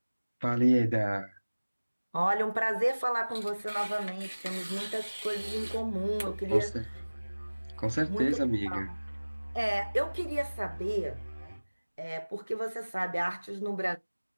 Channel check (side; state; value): both; inverted; correlation -1.00